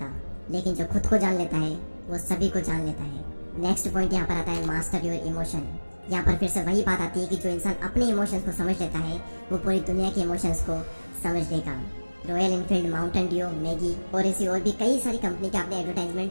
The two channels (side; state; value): both; inverted; correlation -1.00